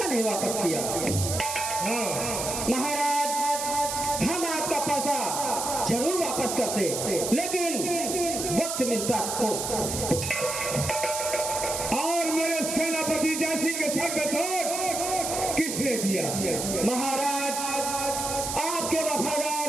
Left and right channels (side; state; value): right; noise; hiss, 3 dB below the sound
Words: नहीं वापस किया। महाराज, हम आपका पैसा जरूर वापस करते, लेकिन वक्त मिलता तो। और मेरे सेनापति जय सिंह के सर पे चोट किसने दिया? महाराज, आपके वफादार